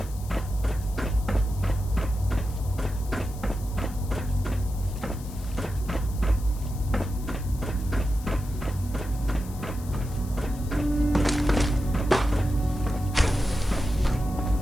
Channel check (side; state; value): left; noise; hiss, 19 dB below the sound